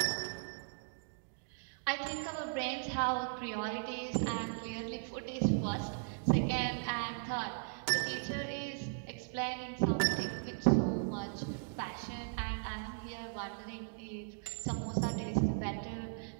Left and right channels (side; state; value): left; silent; digital silence